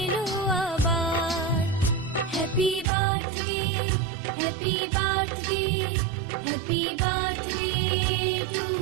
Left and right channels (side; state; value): left; drops out; at 2.9 s